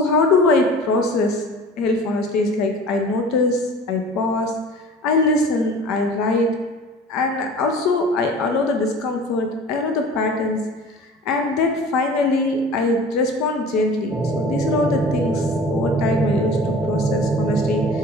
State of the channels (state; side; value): normal; both; correlation 0.42